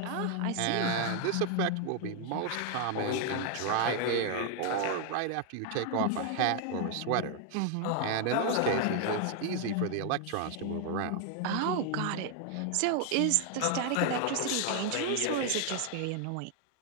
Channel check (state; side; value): different; both; correlation 0.00